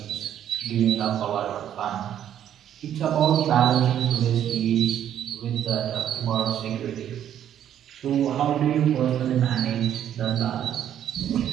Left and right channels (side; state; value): left; quieter; 10.3 dB